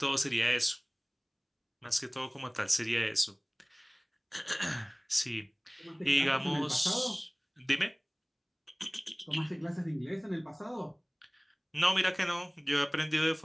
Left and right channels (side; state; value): both; identical; correlation 1.00